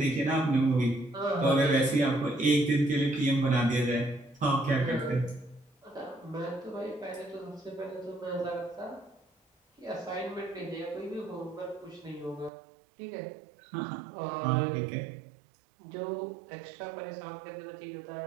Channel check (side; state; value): left; drops out; at 12.5 s